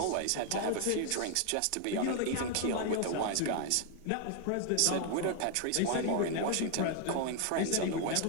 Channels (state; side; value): different; both; correlation 0.00